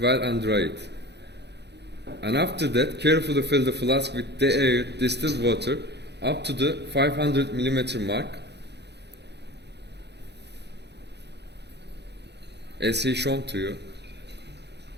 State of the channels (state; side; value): late; left; 0.49 ms